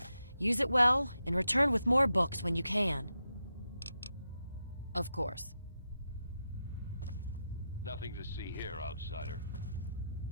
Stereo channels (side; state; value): both; inverted; correlation -0.87